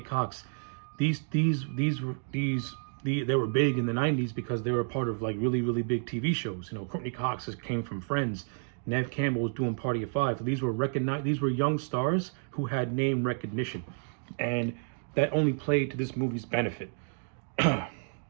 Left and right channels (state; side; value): silent; left; 58 dB below the other